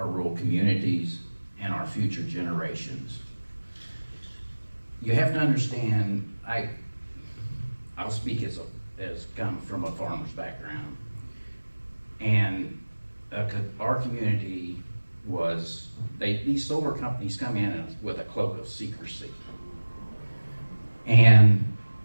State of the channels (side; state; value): both; inverted; correlation -1.00